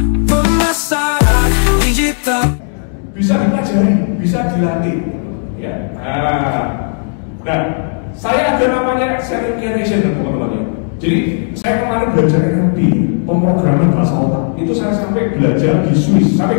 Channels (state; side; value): silent; right; 59 dB below the other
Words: Pemasaran digital bisa dipelajari, bisa dilatih ya. Nah, saya ada namanya selling creation teman-teman ya. Jadi saya kemarin belajar NLP, pemrograman bahasa otak. Itu saya sampai belajar di Swiss.